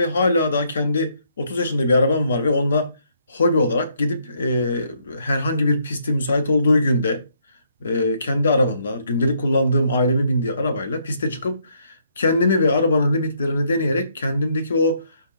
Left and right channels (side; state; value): both; inverted; correlation -0.72